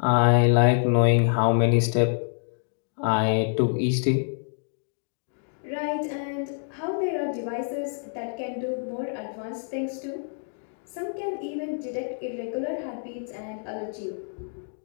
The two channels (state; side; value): silent; right; digital silence